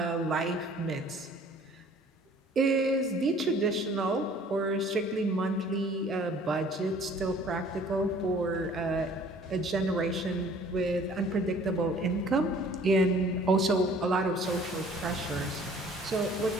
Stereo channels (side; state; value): both; normal; correlation 0.53